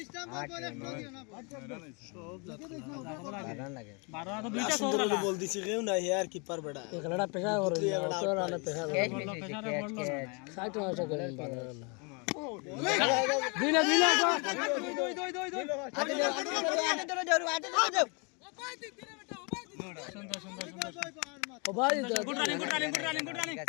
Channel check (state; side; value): quieter; right; 32.9 dB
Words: स्टंप बॉल एक्स्ट्रा दियो ना রান লাগে 12 তো দুইটা সুন্দর বল দিছে কেউ না यार कीपर बेटा एक लड़ा पेशा हो रही है तो राना पेशा ক্যাচ মিস ক্যাচ साइड में ऐसा करें बिना बिना আতে ধরে যাও ओ भाई গুড রানিং ঠিক